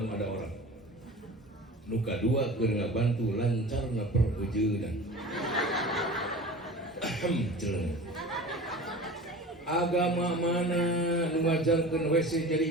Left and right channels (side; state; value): both; normal; correlation 0.37